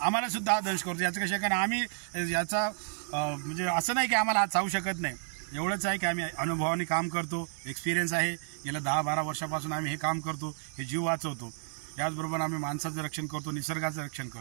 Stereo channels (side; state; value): left; silent; digital silence